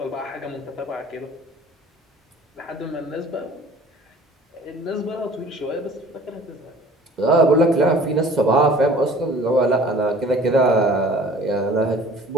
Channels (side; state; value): both; normal; correlation 0.49